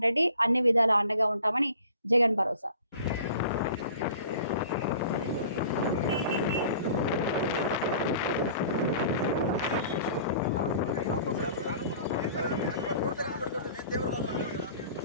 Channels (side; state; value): both; inverted; correlation -0.48